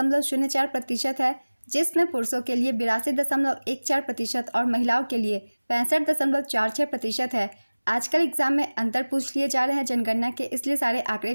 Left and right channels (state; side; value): inverted; both; correlation -1.00